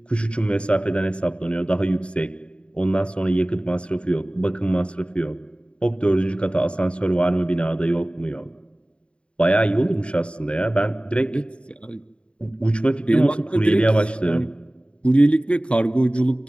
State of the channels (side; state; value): right; late; 0.056 ms